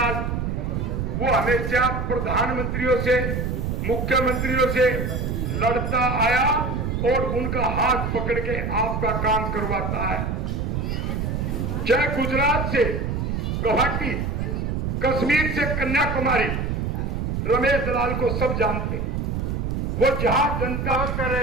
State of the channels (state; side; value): noise; right; rumble, 1 dB below the sound